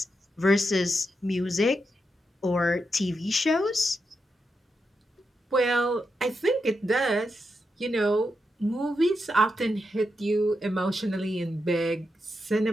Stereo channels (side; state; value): both; normal; correlation 0.85